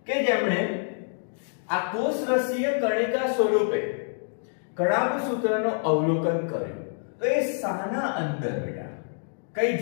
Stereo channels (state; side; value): silent; right; digital silence